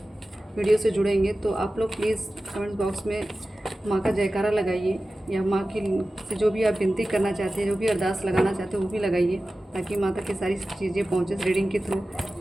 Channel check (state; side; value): normal; both; correlation 0.95